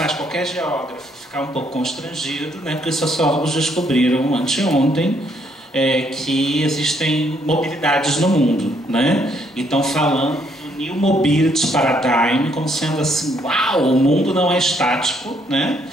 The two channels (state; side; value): normal; both; correlation 0.70